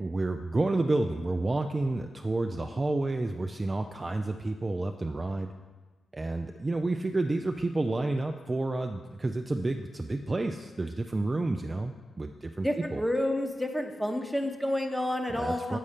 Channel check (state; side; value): normal; both; correlation 0.96